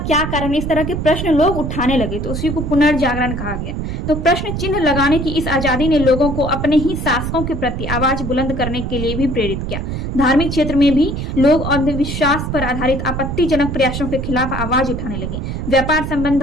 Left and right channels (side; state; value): right; noise; rumble, 4 dB below the sound